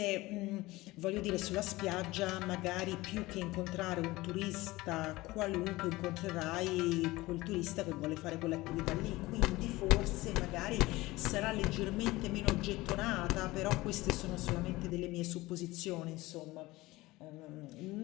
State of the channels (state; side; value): quieter; right; 19.7 dB